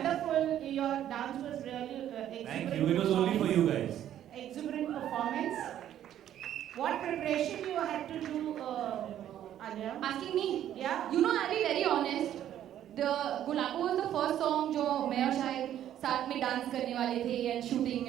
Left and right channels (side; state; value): left; quieter; 11.2 dB